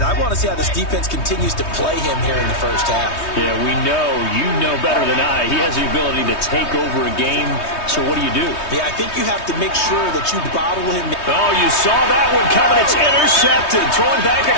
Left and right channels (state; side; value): late; right; 3.2 ms